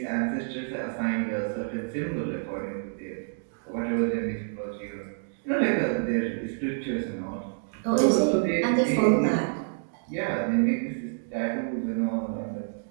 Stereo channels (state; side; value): silent; left; digital silence